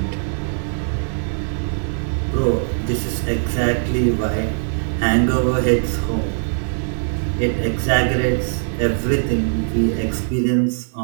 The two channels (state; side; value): silent; left; digital silence